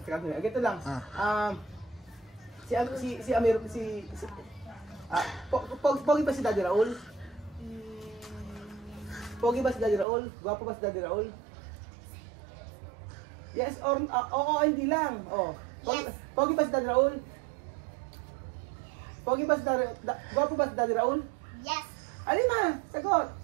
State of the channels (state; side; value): drops out; left; at 10.1 s